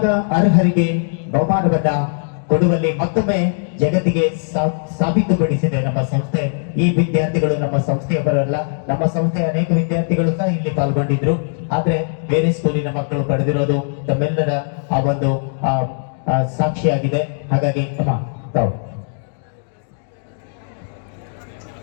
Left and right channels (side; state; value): right; silent; digital silence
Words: ಅರ್ಹರಿಗೆ ಬಹುಮಾನವನ್ನ ಕೊಡುವಲ್ಲಿ ಮತ್ತೊಮ್ಮೆ ಜಗತ್ತಿಗೆ ಸಾಬೀತುಪಡಿಸಿದೆ ನಮ್ಮ ಸಂಸ್ಥೆ. ಈ ವಿದ್ಯಾರ್ಥಿಗಳು ನಮ್ಮ ಸಂಸ್ಥೆಯವರಲ್ಲ, ನಮ್ಮ ಸಂಸ್ಥೆಯ ಅನೇಕ ವಿದ್ಯಾರ್ಥಿಗಳು ಸಹ ಇಲ್ಲಿ ಪಾಲ್ಗೊಂಡಿದ್ರು. ಆದ್ರೆ ಬೇರೆ ಸ್ಕೂಲಿನ ಮಕ್ಕಳು ಪಡೆದಿರೋದು ತಮ್ಮೆಲ್ಲರ ಆ ಒಂದು ಸಾಕ್ಷಿಯಾಗಿದೆ. ಹಾಗಾಗಿ ತಾವು